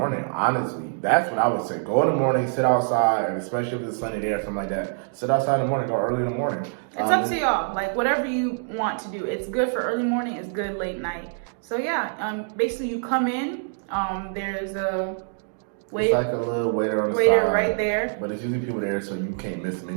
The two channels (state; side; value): silent; left; digital silence